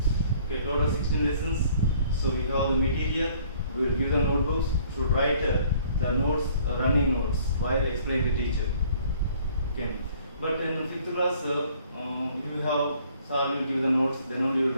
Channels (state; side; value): inverted; both; correlation -0.58